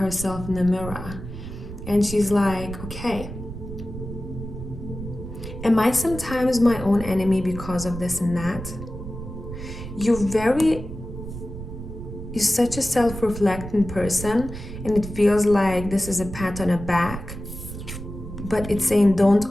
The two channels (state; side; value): noise; right; rumble, 10 dB below the sound